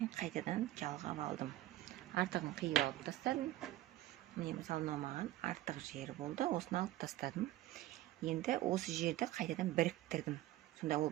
қайтадан жалғап алдым. Артығын қиып алып тастадым. Міне мысалы маған артық жері болды, осыны алып тастадым. Енді осы жерді қайтадан біріктірдім. Сонда ол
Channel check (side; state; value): left; quieter; 15.1 dB